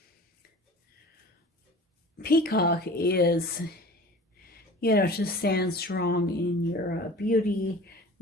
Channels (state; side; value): normal; both; correlation 0.41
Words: peacock is, you know, to stand strong in your beauty,